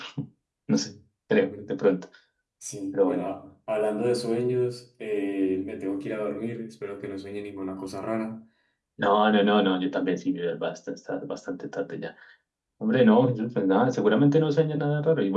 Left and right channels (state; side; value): identical; both; correlation 1.00